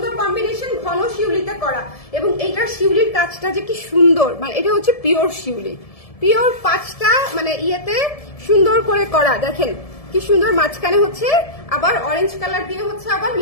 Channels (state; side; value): late; right; 1.7 ms